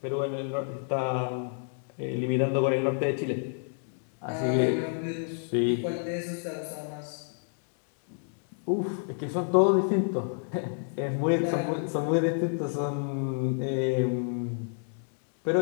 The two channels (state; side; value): silent; right; 58 dB below the other